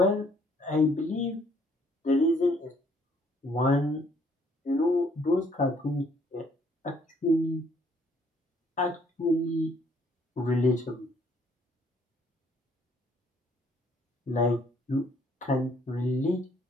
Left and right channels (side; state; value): both; normal; correlation 0.64